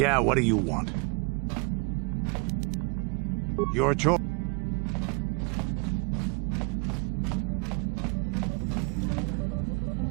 what do you want? Your choice.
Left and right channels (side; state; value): left; quieter; 31.1 dB